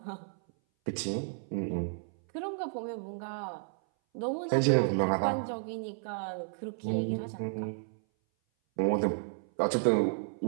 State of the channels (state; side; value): silent; left; 56 dB below the other